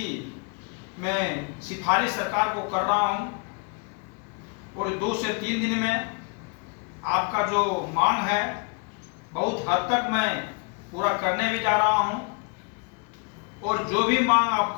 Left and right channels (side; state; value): right; quieter; 34.2 dB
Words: मैं सिफारिश सरकार को कर रहा हूं और 2 से 3 दिन में आपका जो मांग है बहुत हद तक मैं पूरा करने भी जा रहा हूं और जो भी मांग